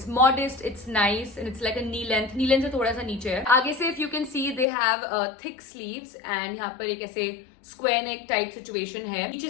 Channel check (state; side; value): drops out; right; at 4.7 s